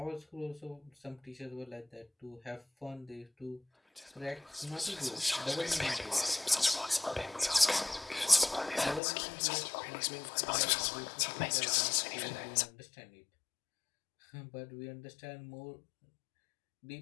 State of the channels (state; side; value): drops out; right; at 9.0 s